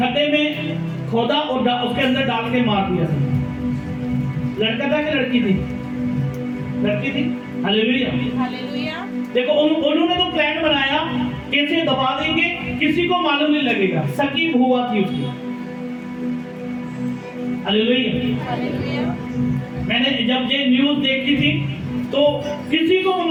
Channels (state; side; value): identical; both; correlation 1.00